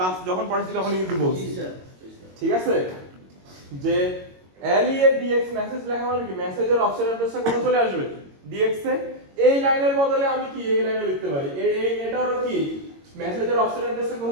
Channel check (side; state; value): left; late; 22 ms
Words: যখন পড়াইছি তখন কিন্তু বলছি, ঠিক আছে? যে LEA DX মেসেজ লেখা মানে কি মেসেজের অফসেট অ্যাড্রেসটা কোথায় চলে আসবে? DX এ। এই লাইনের বদলে আমি কি এই লাইনে লিখতে পারি, এটারও কি মেসেজের অফসেট অ্যাড্রেসটা